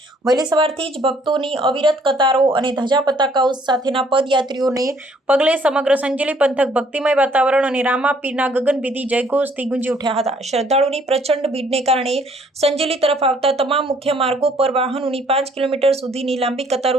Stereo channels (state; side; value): normal; both; correlation 0.63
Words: વહેલી સવારથી જ ભક્તોની અવિરત કતારો અને ધજા પતાકાઓ સાથેના પદયાત્રીઓને પગલે સમગ્ર સંજેલી પંથક ભક્તિમય વાતાવરણ અને રામાપીરના ગગનભેદી જયઘોષથી ગુંજી ઉઠ્યા હતા। શ્રદ્ધાળુની પ્રચંડ ભીડને કારણે સંજેલી તરફ આવતા તમામ મુખ્ય માર્ગો પર વાહનોની 5 કિલોમીટર સુધીની લાંબી